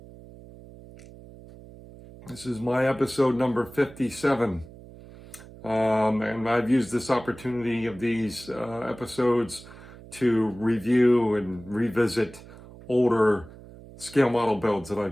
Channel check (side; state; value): right; noise; hum, 19 dB below the sound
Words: This is my episode number 57. And I've used this opportunity of these episodes to review and revisit older scale model builds that